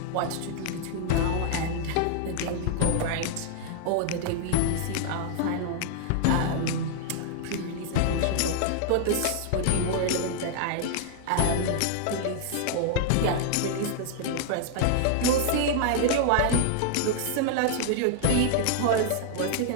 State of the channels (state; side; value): different; both; correlation -0.01